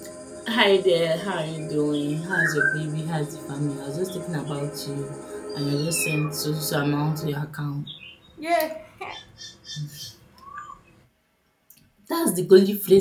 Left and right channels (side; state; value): both; identical; correlation 1.00